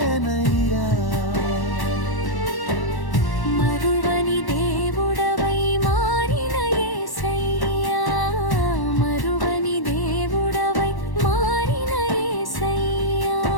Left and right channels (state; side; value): late; right; 1.1 ms